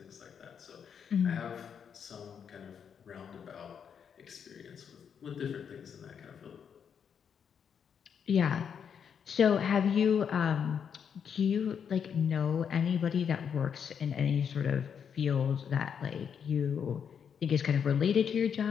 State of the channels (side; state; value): right; quieter; 7.4 dB